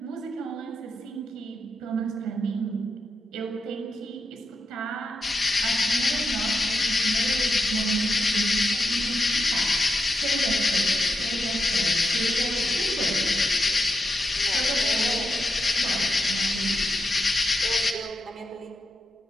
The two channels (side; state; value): both; normal; correlation 0.86